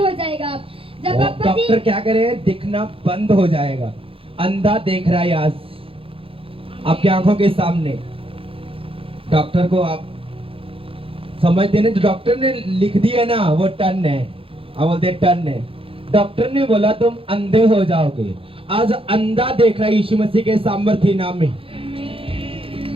जाएगा। जब पापा जी डॉक्टर क्या करे, दिखना बंद हो जाएगा। अंधा देख रहा है आज आपकी आंखों के सामने। डॉक्टर को आप समझते ना, जो डॉक्टर ने लिख दिया ना वो टर्न है, आप बोलते टर्न है। डॉक्टर ने बोला तुम अंधे हो जाओगे, आज अंधा देख रहा है यीशु मसीह के सामर्थ्य नाम में।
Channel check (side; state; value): left; late; 0.27 ms